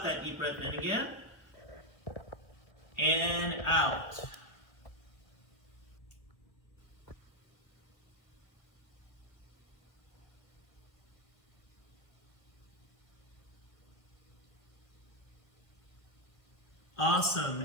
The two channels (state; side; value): late; right; 1.7 ms